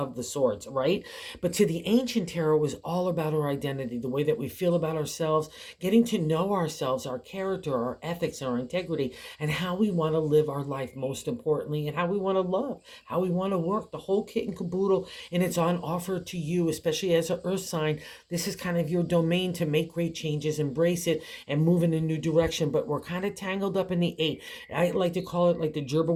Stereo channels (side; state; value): both; identical; correlation 1.00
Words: the swords, right? But to the ancient tarot was all about our identity, the way that we feel about ourselves, getting to know ourselves, our character, our ethics, our integrity, and how we want to live our life, most importantly, and how we want to love, how we want to work, the whole kit and caboodle. And it's on offer to you, especially as an earth sign. This is kind of your domain to make great changes, embrace it, and move in a new direction. But we're kind of tangled up in the 8. I like to call it like the gerbil